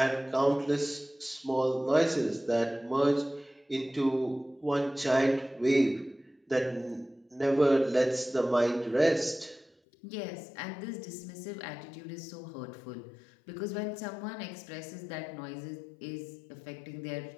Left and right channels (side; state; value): right; drops out; at 9.7 s